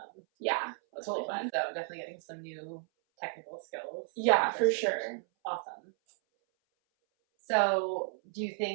Yeah, that's really fun. So definitely getting some new technical skills. Yeah, for sure. Awesome. So do you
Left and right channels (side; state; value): left; silent; 56 dB below the other